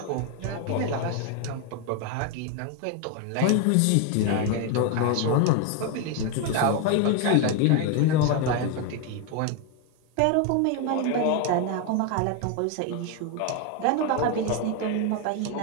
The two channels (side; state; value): both; different; correlation 0.01